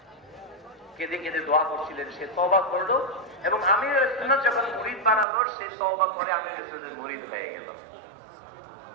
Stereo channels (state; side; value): drops out; left; at 5.2 s